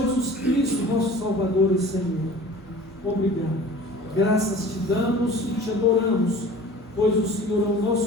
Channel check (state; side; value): normal; both; correlation 0.43